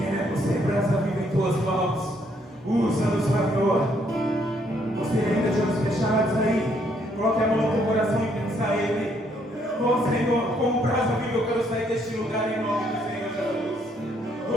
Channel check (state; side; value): normal; both; correlation 0.70